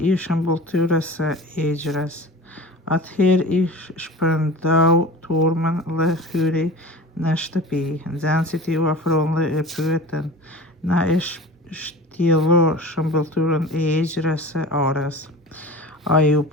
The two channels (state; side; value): normal; both; correlation 0.36